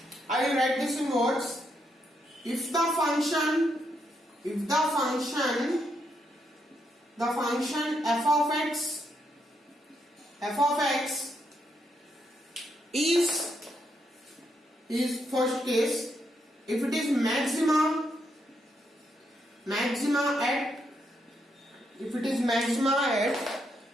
I will write this in words. If the function f of x is first case, if it is maxima at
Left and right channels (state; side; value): normal; both; correlation 0.78